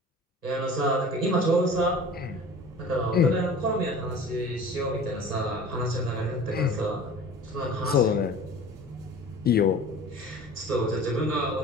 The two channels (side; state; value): both; normal; correlation 0.42